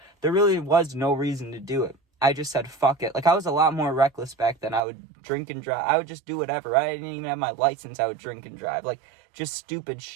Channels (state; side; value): drops out; left; at 4.8 s